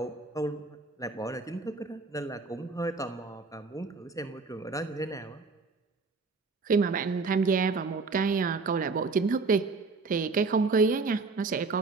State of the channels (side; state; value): left; quieter; 4.1 dB